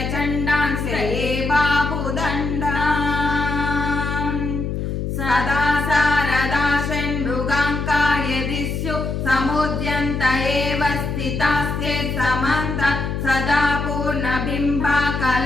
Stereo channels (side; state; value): left; noise; hum, 3 dB below the sound